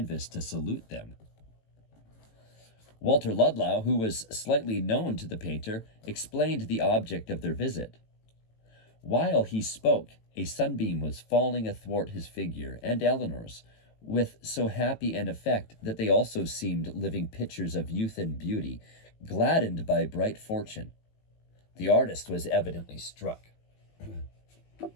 to salute them. Walter Ludlow, who was slightly known to the painter, explained the object of their visit. While he spoke, a sunbeam was falling athwart his figure and Eleanor's, with so happy an effect that they also seemed living pictures of youth and beauty, gladdened by bright fortune. The artist was evidently struck.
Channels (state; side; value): late; right; 18 ms